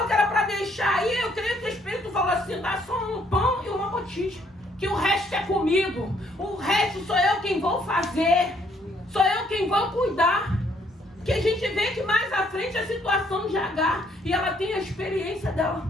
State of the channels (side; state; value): both; normal; correlation 0.68